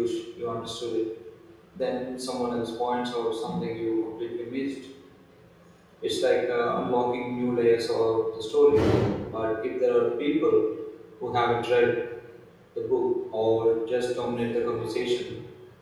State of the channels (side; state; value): both; identical; correlation 1.00